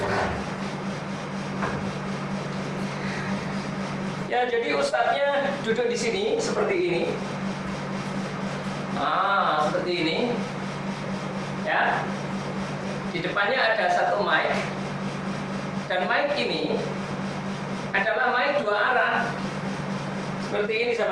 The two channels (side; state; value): both; identical; correlation 1.00